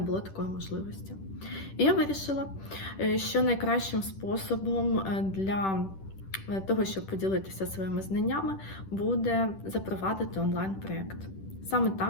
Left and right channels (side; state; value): right; late; 10 ms